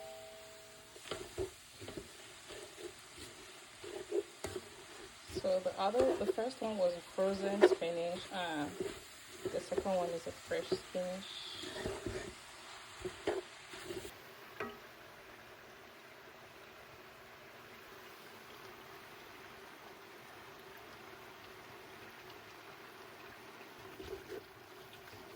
So the first one was a frozen spinach, and the second one is a fresh spinach.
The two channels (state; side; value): identical; both; correlation 1.00